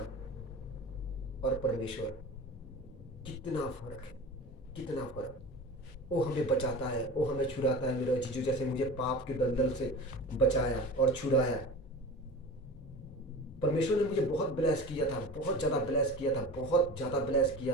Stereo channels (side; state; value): both; normal; correlation 0.34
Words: और परमेश्वर कितना फर्क। वो हमें बचाता है, वो हमें छुड़ाता है। मेरा जीजू जैसे मुझे पाप के दलदल से बचाया और छुड़ाया। परमेश्वर ने मुझे बहुत ब्लेस किया था, बहुत ज़्यादा ब्लेस